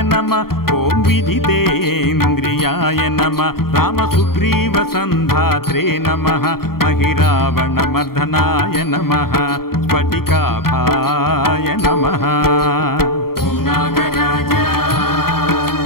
नमः ॐ विजितेन्द्रियाय नमः रामसुग्रीवसन्धात्रे नमः महिरावणमर्दनाय नमः स्फटिकाभाय नमः ॐ नागराज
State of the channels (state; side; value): late; right; 0.93 ms